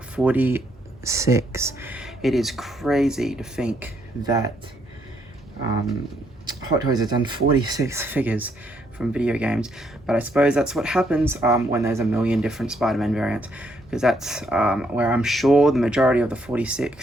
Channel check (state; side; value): normal; both; correlation 0.73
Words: It is crazy to think that Hot Toys has done 46 figures from video games, but I suppose that's what happens when there's a million different Spider-Man variants, because that's where I'm sure the majority of the